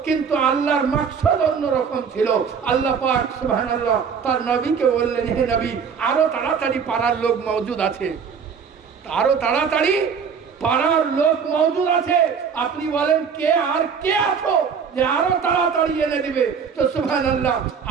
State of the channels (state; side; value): quieter; left; 6.4 dB